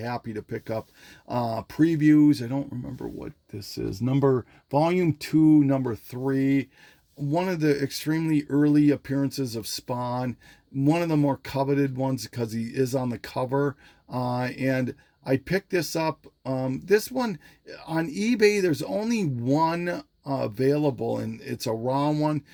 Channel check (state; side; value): identical; both; correlation 1.00